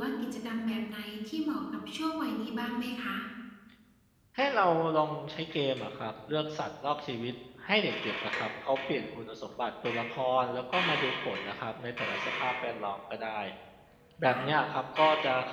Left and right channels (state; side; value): identical; both; correlation 1.00